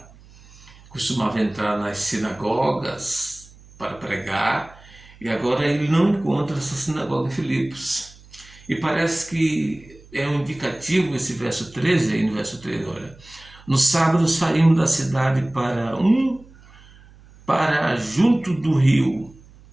nas sinagogas para pregar, e agora ele não encontra essa sinagoga em Filipos. E parece que é um indicativo esse verso 13, aí no verso 13, olha. No sábado saímos da cidade para junto do rio,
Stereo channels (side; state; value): right; noise; hum, 24 dB below the sound